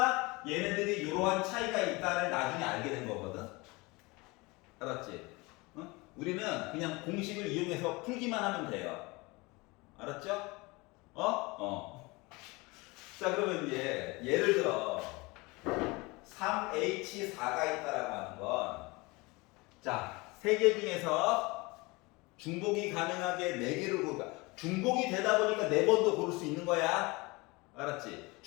얘네들이 이러한 차이가 있다를 나중에 알게 된 거거든. 알았지? 우리는 그냥 공식을 이용해서 풀기만 하면 돼요. 알았죠? 자, 그러면 이제 예를 들어 3H4가 있다라고 하는 건, 자, 3개 중에서 중복이 가능하게 4개를 고르까. 중복이 되다 보니까 4번도 고를 수 있는 거야. 알았지?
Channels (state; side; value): quieter; right; 24.6 dB